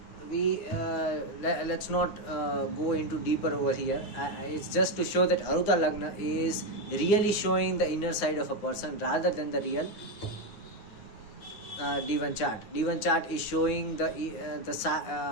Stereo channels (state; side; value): late; right; 9.6 ms